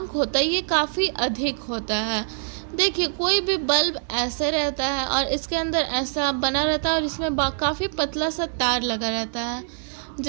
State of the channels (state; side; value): silent; left; digital silence